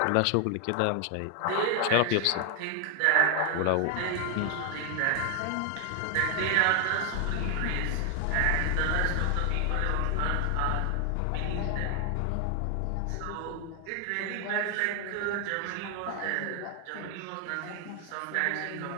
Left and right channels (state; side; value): different; both; correlation 0.00